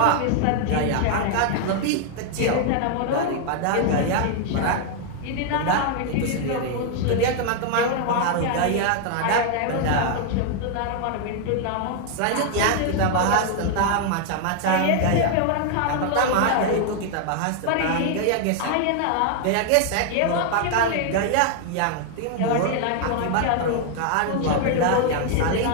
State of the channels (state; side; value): different; both; correlation 0.00